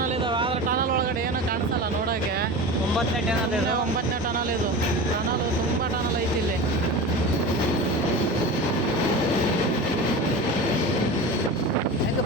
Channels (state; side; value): normal; both; correlation 0.30